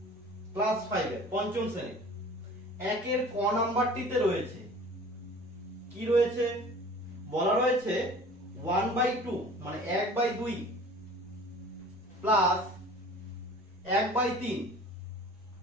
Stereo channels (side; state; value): both; normal; correlation 0.45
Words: ক্লাস 5 এর পঞ্চম শ্রেণী একের ক নাম্বারটিতে রয়েছে কি রয়েছে, বলা রয়েছে 1/2 মানে 1/2 প্লাস 1/3।